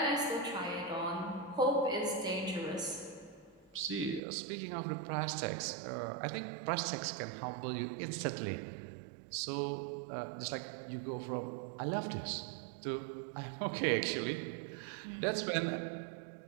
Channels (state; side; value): drops out; left; at 4.2 s